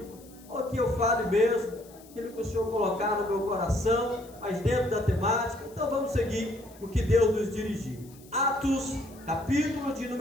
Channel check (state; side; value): noise; left; hiss, 24 dB below the sound